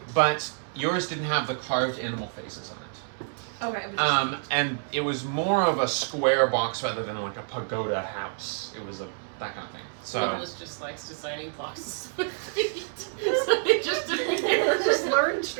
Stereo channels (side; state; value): left; silent; 60 dB below the other